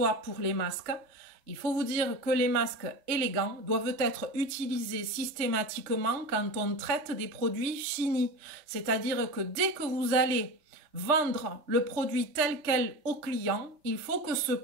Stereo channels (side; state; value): left; late; 3.3 ms